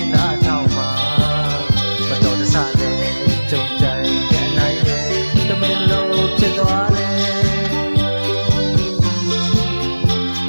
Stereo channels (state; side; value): inverted; both; correlation -1.00